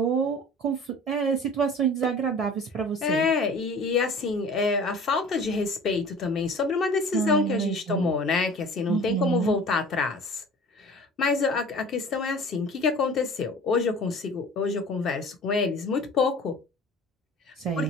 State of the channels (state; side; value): normal; both; correlation 0.43